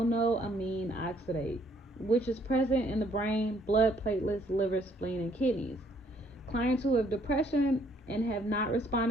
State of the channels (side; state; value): both; normal; correlation 0.66